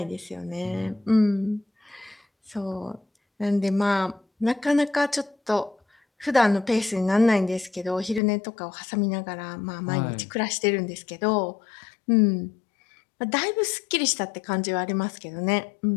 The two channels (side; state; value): right; drops out; at 8.2 s